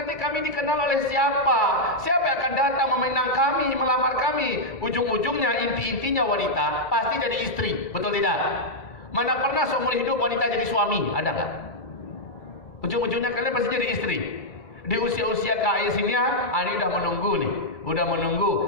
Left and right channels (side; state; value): right; late; 2.3 ms